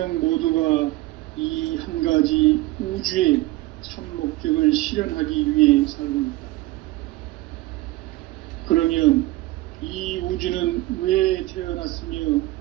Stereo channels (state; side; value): quieter; left; 18.7 dB